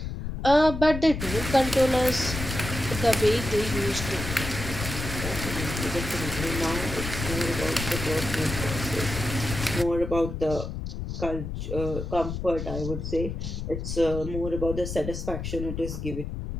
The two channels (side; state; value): left; noise; rumble, 5 dB below the sound